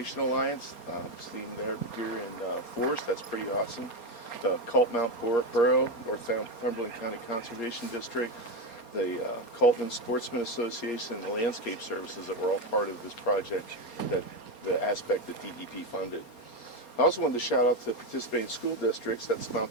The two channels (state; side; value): late; right; 4.3 ms